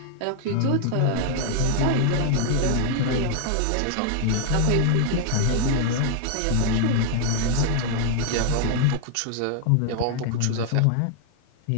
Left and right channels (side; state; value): both; different; correlation 0.00